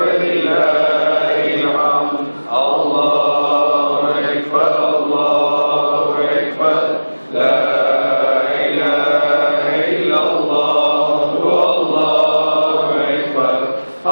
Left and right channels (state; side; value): inverted; both; correlation -1.00